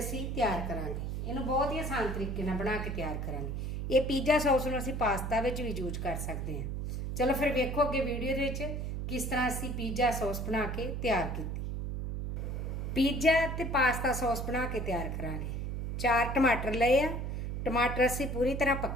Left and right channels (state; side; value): noise; right; hum, 3 dB below the sound